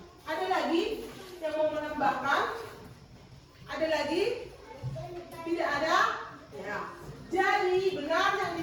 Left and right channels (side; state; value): both; identical; correlation 1.00